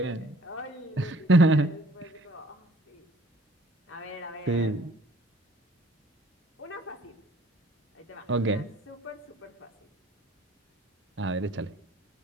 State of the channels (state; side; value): normal; both; correlation 0.56